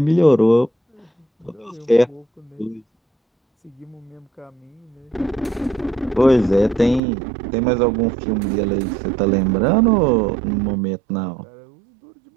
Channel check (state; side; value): drops out; left; at 7.0 s